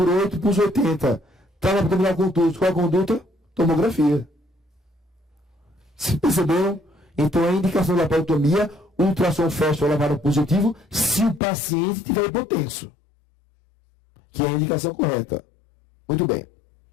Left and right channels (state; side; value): drops out; right; at 11.4 s